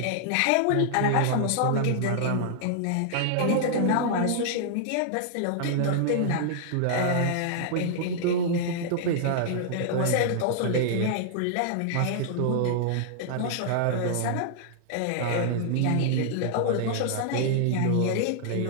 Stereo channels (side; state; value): both; different; correlation -0.01